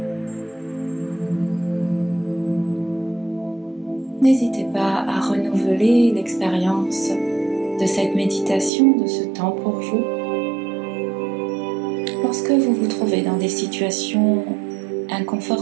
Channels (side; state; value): left; drops out; at 8.7 s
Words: N'hésitez pas à renouveler l'expérience de cette méditation, de ce temps pour vous. Lorsque vous vous trouvez dans des situations